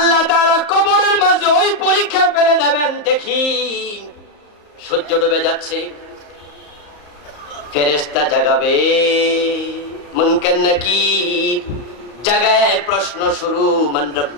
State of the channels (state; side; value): late; right; 34 ms